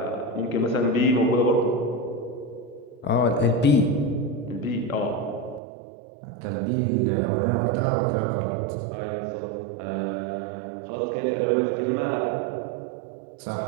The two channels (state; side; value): drops out; left; at 5.6 s